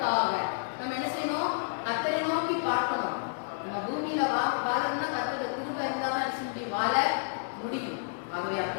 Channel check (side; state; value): right; silent; digital silence